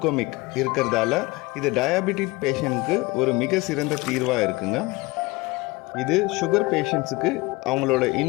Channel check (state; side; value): quieter; right; 22.7 dB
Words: இருக்கிறதால இது டயபெட்டிக் பேஷண்ட்க்கு ஒரு மிக சிறந்த தீர்வாக இருக்குங்க. இது சுகர் பேஷண்ட்ஸுக்கு அவங்களோட